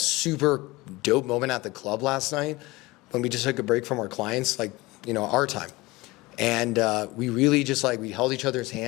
dope moment at the club last night when we just took a break from our clients, like, you know, our time. And we really just like, we held each other's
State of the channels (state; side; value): quieter; right; 21.5 dB